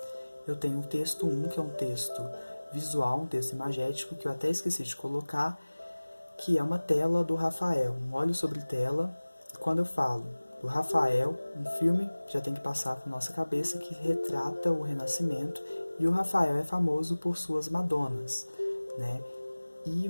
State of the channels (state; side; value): inverted; both; correlation -1.00